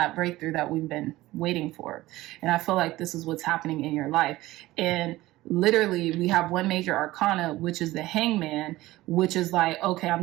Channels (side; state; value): left; quieter; 17.6 dB